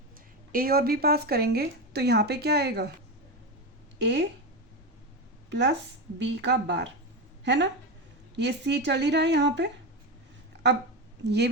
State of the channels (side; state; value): both; normal; correlation 0.16